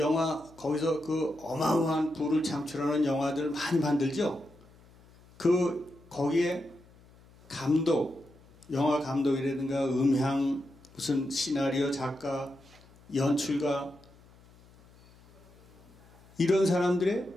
거기서 그 어마어마한 부를 창출하는 영화들 많이 만들죠. 거기에 감독, 영화 감독이라든가 음향, 무슨 시나리오 작가, 연출가 이런 사람들의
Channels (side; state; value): left; noise; hum, 26 dB below the sound